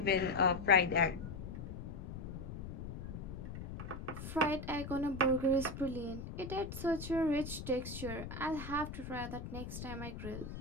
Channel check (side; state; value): left; noise; rumble, 8 dB below the sound